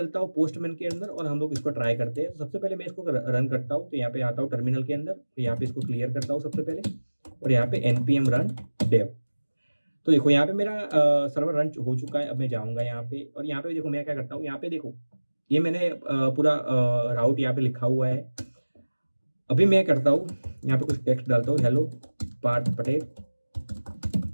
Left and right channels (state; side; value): inverted; both; correlation -1.00